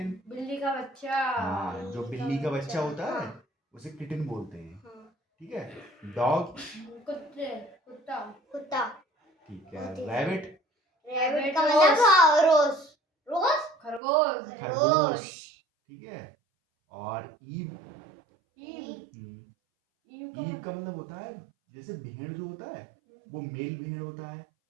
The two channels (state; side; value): drops out; left; at 14.0 s